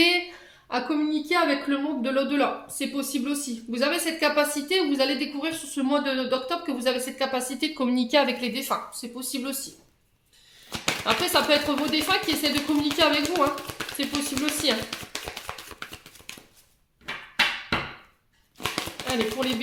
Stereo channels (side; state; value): both; identical; correlation 1.00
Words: à communiquer avec le monde de l'au-delà. C'est possible aussi. Vous avez cette capacité, vous allez découvrir sur ce mois d'octobre que vous avez cette capacité de communiquer avec les défunts. C'est possible aussi. Après, ça peut être vos défunts qui essaient de communiquer avec vous. Hein. C'est possible aussi. Hein. Allez, pour les